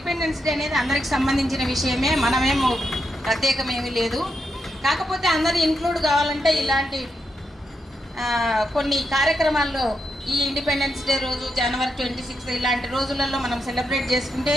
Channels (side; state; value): both; normal; correlation 0.83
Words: డే అనేది అందరికి సంబంధించిన విషయమే, మనమేమో ప్రత్యేకమేమీ లేదు. కాకపోతే అందరూ ఇంక్లూడ్ కావాలంటే ఇలాంటి కొన్ని కార్యక్రమాల్లో ఈ ఇండిపెండెన్స్ డే రోజు జనవరి 26 ఇలాంటి రోజులలో మనం సెలబ్రేట్ చేసుకుంటే